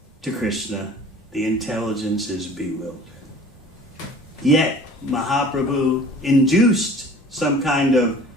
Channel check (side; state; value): both; normal; correlation 0.46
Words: to Krishna, the intelligence is bewildered. Yet, Mahaprabhu induced some kind of